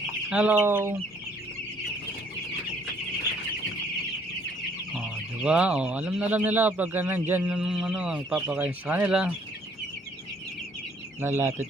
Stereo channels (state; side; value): normal; both; correlation 0.62